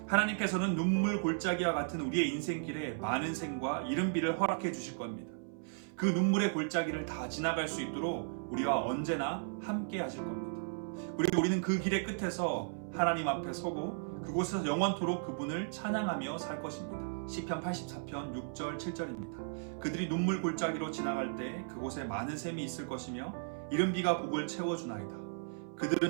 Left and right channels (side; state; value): left; silent; 54 dB below the other